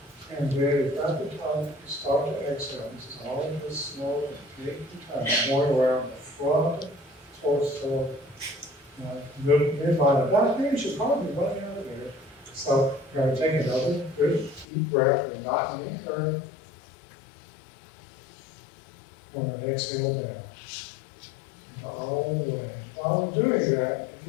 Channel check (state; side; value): drops out; right; at 14.7 s